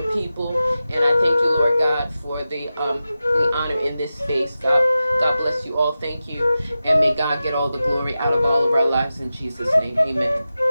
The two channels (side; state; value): both; inverted; correlation -0.93